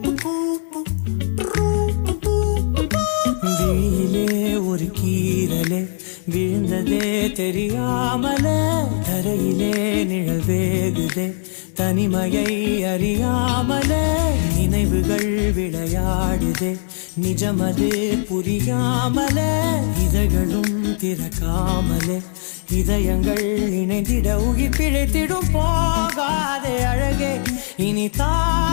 விழியிலே ஒரு கீரலே விழுந்ததே தெரியாமலே தரையிலே நிழல் வேகுதே தனிமையை அறியாமலே நினைவுகள் விளையாடுதே நிஜமது புரியாமலே இதழ்களும் திறக்காமலே இதயங்கள் இணைந்திட உயிர் பிழைத்திடும் போகாதே அழகே இனி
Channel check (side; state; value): right; silent; digital silence